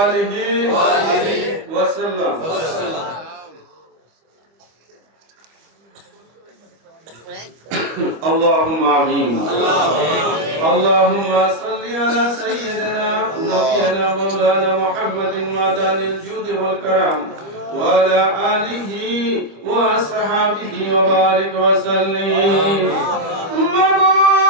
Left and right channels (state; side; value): late; left; 25 ms